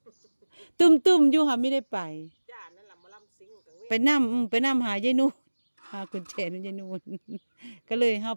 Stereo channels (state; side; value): inverted; both; correlation -1.00